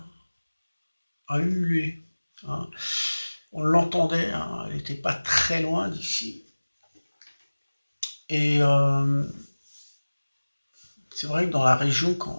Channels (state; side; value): inverted; both; correlation -1.00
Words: hurler, hein. On l'entendait, hein, elle n'était pas très loin d'ici. Et c'est vrai que dans la région,